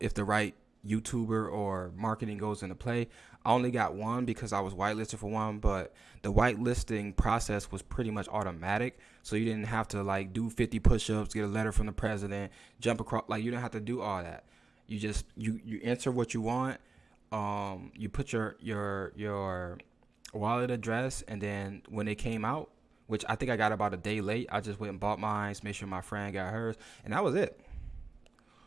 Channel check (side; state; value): left; quieter; 4.0 dB